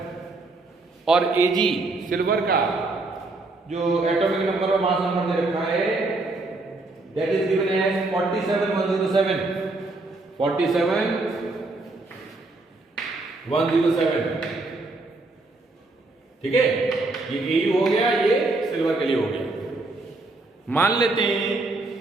और AG सिल्वर का जो एटॉमिक नंबर और मास नंबर दे रखा है दैट इज गिवन एज 47 107 ठीक है। ये AU हो गया, ये सिल्वर के लिए हो गया। मान लेते हैं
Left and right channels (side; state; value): left; quieter; 3.2 dB